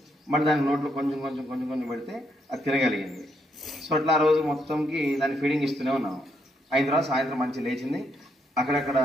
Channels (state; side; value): normal; both; correlation 0.76